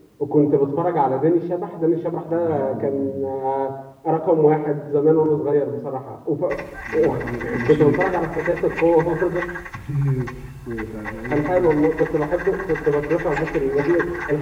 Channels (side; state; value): both; identical; correlation 1.00